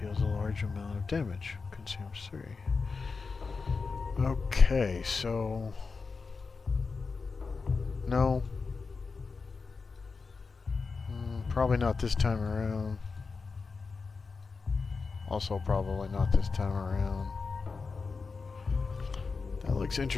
a large amount of damage. Consumes 3. Okay, so... No. Probably not this time around. Also probably not this time around. That looks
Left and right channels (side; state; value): right; quieter; 4.6 dB